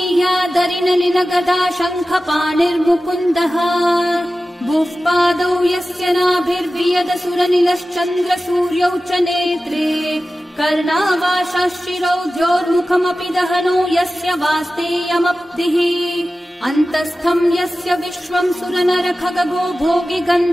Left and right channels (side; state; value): both; normal; correlation 0.95